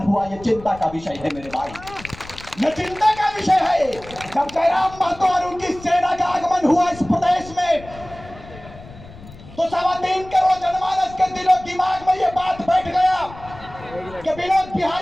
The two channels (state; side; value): noise; left; rumble, 18 dB below the sound